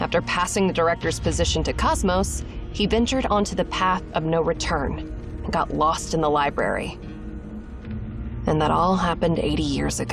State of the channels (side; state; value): both; identical; correlation 1.00